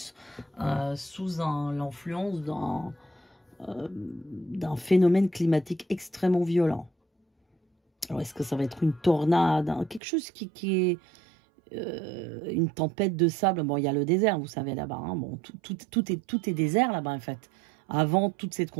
sous l'influence d'un phénomène climatique extrêmement violent. Alors, est-ce que ça va être une tornade, hein, quelque chose qui est une tempête de sable? Bon, il y a le désert, vous savez, là-bas. Hein. Bon, tout est désert là-bas, en fait. Avant toute cette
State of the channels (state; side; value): drops out; left; at 10.0 s